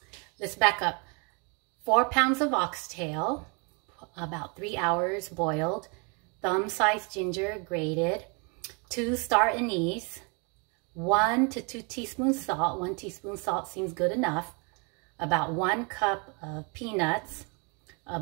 let's back up. 4 pounds of oxtail, about 3 hours boiled. Thumb-sized ginger grated. 2 star anise. 1 to 2 teaspoons salt. 1 teaspoon salt seems good enough. About 1 cup of peanuts. A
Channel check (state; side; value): quieter; left; 33.6 dB